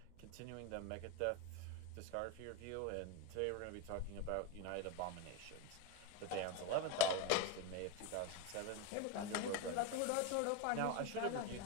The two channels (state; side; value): different; both; correlation 0.04